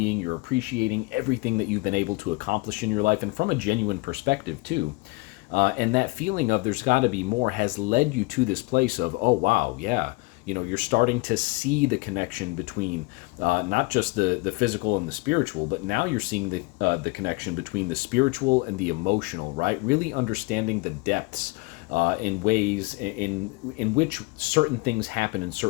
You're appreciating everything that you've been able to accomplish in your life, and from a genuine perspective too. And that feeling of there's got to be more has led you to this place of, oh wow, yeah, you're starting to see the connection between not just the physical and the spiritual, but now you're seeing the connection between the spiritual and the emotional, right? Really understanding the depths in ways in which certain things happen in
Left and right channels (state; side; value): quieter; right; 25.3 dB